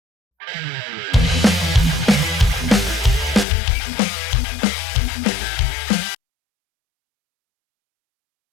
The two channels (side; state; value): right; drops out; at 3.5 s